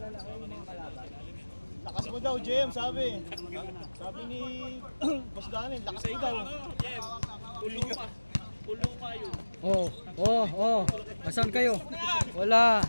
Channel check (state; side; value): inverted; both; correlation -1.00